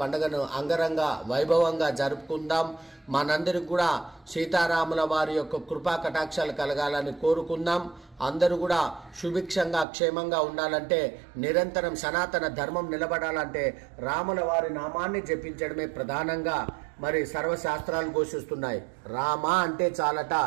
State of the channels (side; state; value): left; drops out; at 9.9 s